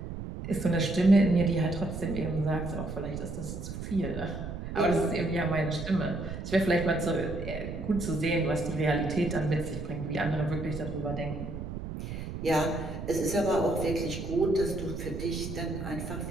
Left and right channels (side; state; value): right; noise; rumble, 7 dB below the sound